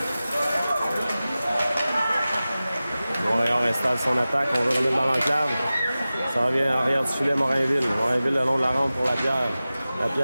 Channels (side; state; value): both; inverted; correlation -0.96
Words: Montréal installe son attaque. On veut remettre dans l'enclave. Ça revient en arrière du filet Morinville. Morinville le long de la rampe pour Lapierre.